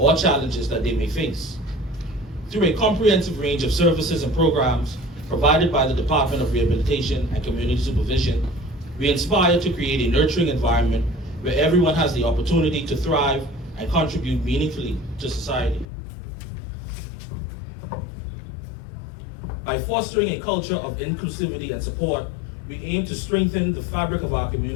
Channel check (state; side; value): drops out; right; at 15.9 s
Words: challenges that they may face. Through a comprehensive range of services and programs provided by the Department of Rehabilitation and Community Supervision, we aspire to create a nurturing environment where everyone has the opportunity to thrive and contribute meaningfully to society. By fostering a culture of inclusivity and support, we aim to strengthen the fabric of our